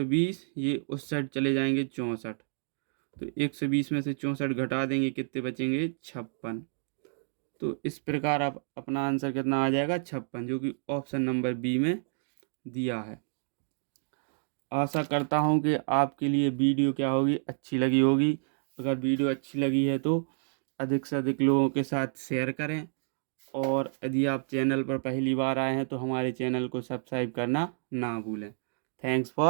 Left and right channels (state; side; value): silent; left; digital silence